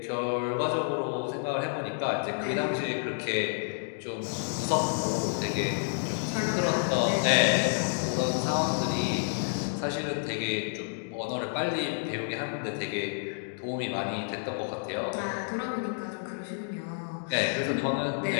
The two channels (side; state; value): right; silent; digital silence